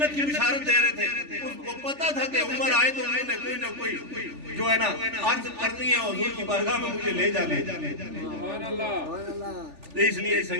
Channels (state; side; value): late; left; 3.4 ms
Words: کی بشارت دے رہے تھے اس کو پتا تھا کہ عمر آئے تو انہوں نے کوئی نہ کوئی جو ہے نا عرض کرنی ہے حضور کی بارگاہ میں مجھے لے جانے اس لیے